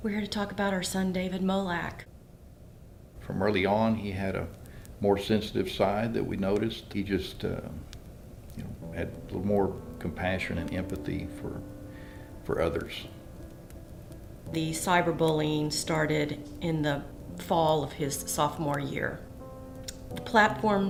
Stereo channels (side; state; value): both; identical; correlation 1.00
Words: We're here to talk about our son, David Molak. From early on, he had a more sensitive side that we noticed. He just had a little more compassion and empathy for others. The cyberbullying started in the fall of his sophomore year. The